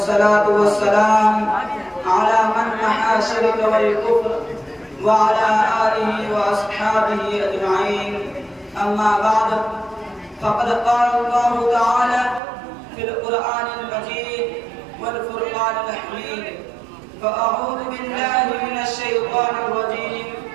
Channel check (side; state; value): left; drops out; at 12.4 s